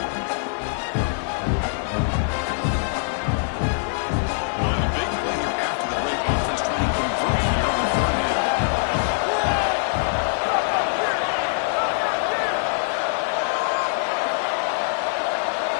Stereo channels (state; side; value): silent; right; 59 dB below the other